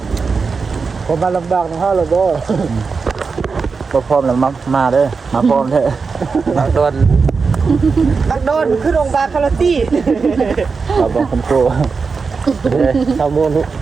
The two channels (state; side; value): quieter; left; 4.9 dB